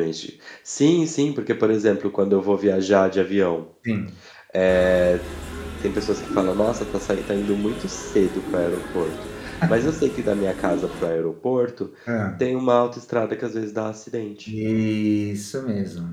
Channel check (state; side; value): identical; both; correlation 1.00